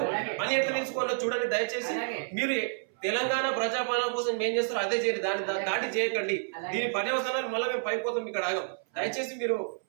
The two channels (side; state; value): left; silent; 58 dB below the other